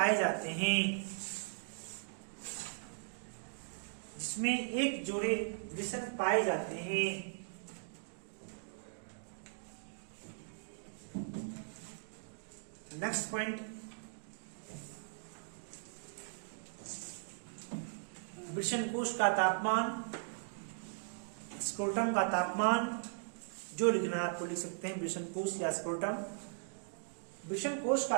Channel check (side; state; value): left; silent; digital silence